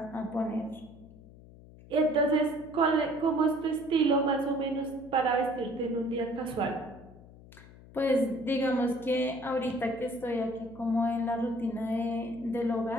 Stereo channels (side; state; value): left; noise; hum, 20 dB below the sound